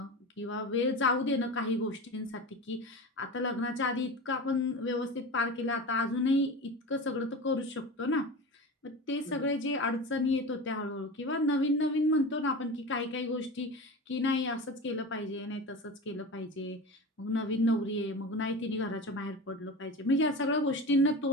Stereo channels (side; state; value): both; normal; correlation 0.29